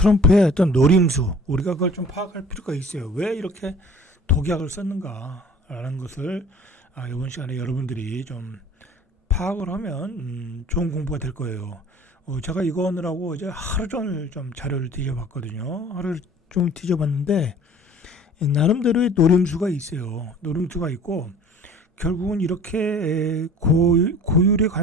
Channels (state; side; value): normal; both; correlation 0.47